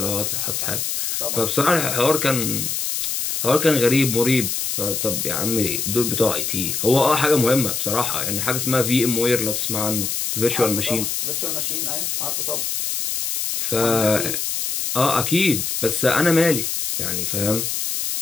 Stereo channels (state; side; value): noise; left; hiss, 1 dB below the sound